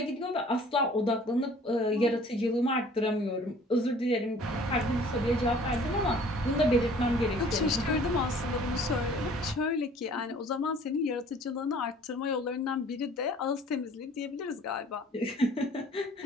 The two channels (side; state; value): both; normal; correlation 0.52